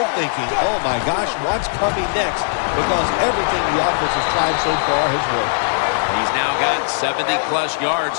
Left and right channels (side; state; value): right; silent; 64 dB below the other